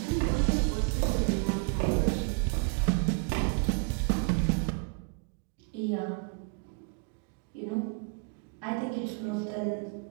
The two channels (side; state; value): left; quieter; 36.3 dB